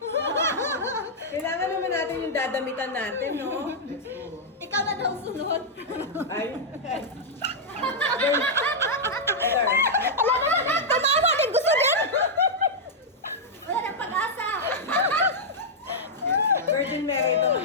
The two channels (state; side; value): normal; both; correlation -0.05